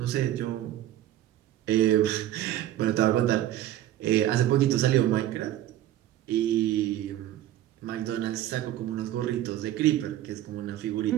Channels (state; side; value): quieter; left; 13.1 dB